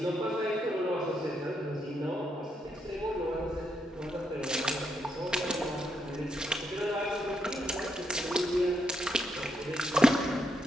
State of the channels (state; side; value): normal; both; correlation 0.79